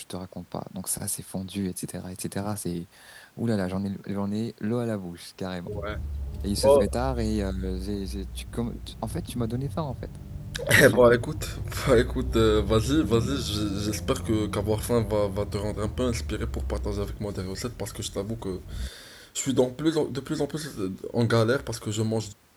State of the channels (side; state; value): both; identical; correlation 1.00